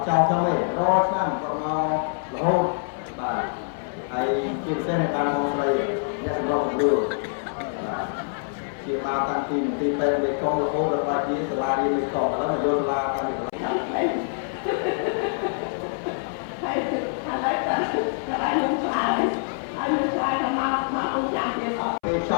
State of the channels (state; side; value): silent; right; 62 dB below the other